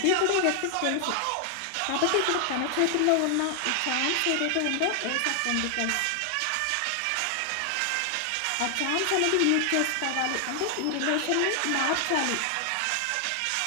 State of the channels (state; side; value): different; both; correlation 0.00